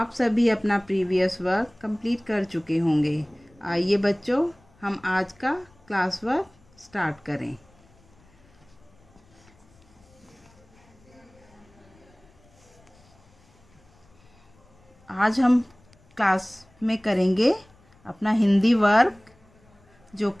सभी अपना previous work complete कर चुके होंगे। आइए बच्चों, हम आज का क्लास वर्क स्टार्ट करें। आज हम क्लास में करेंगे अपना हिंदी वर्क, जो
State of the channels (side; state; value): left; noise; rumble, 29 dB below the sound